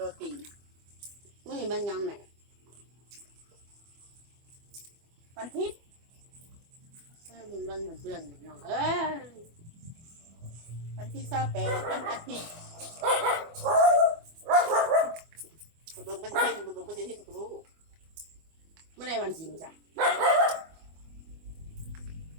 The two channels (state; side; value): late; left; 25 ms